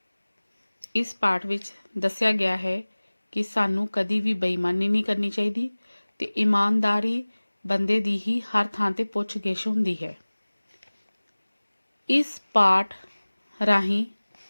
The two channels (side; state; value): both; inverted; correlation -1.00